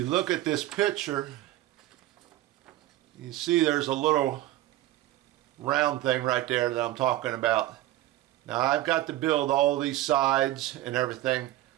look at this picture, you see there's a little round thing right there that I'm talking about. Now I've got to build all these sides and everything.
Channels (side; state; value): left; quieter; 15.6 dB